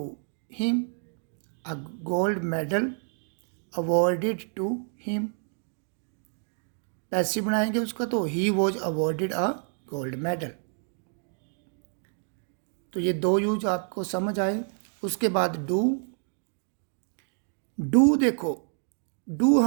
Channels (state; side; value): silent; left; 59 dB below the other